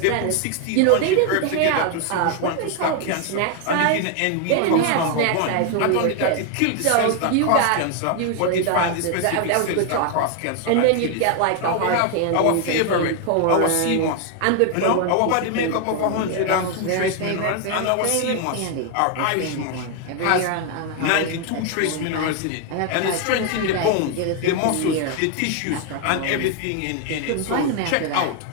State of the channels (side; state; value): both; different; correlation 0.01